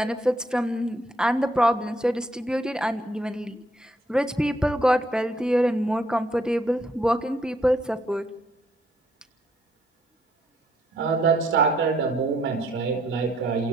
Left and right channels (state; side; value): normal; both; correlation 0.71